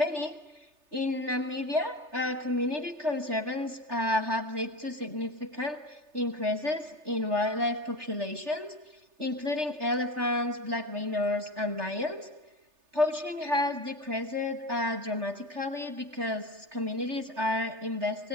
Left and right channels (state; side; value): late; left; 3.3 ms